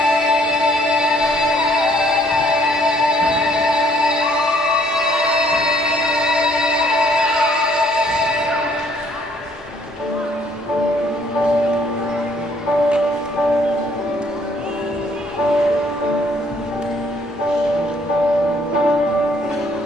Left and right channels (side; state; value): both; normal; correlation 0.63